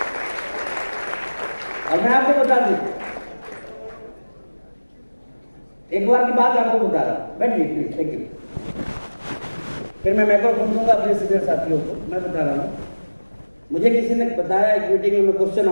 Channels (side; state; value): both; inverted; correlation -1.00